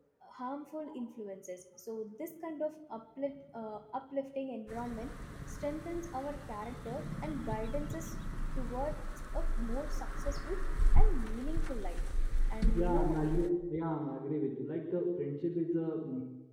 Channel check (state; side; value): identical; both; correlation 1.00